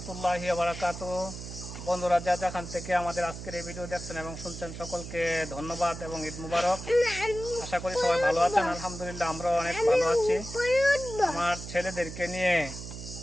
বারাকাতুহু। বন্ধুরা যা যেখান থেকে আমাদের আজকের এই ভিডিও দেখছেন এবং শুনছেন সকলকে ধন্যবাদ এবং ঈদ মুবারক। আশা করি সবাই ভালো আছেন। আলহামদুলিল্লাহ আমরাও অনেক ভালো আছি। আমার ছেলেদেরকে নিয়ে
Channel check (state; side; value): noise; right; hum, 10 dB below the sound